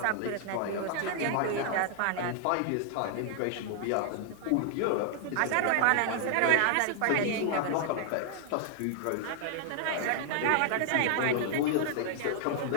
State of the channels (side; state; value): both; different; correlation 0.00